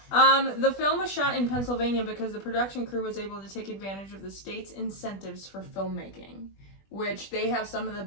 The film was shot in Pennsylvania because the production crew was able to take advantage of the state's incentives for filmmaking. Which they have some of the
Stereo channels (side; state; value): right; late; 20 ms